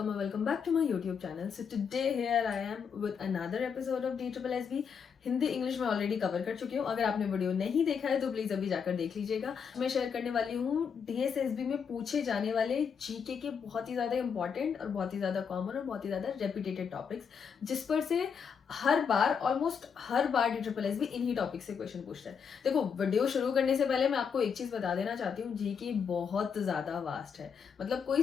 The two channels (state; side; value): quieter; right; 6.6 dB